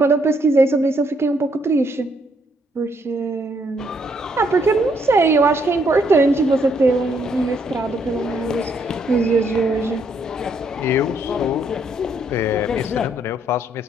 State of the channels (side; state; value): both; normal; correlation 0.71